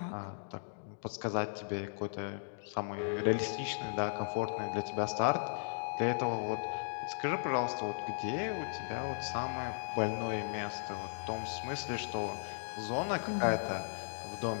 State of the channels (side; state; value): right; silent; digital silence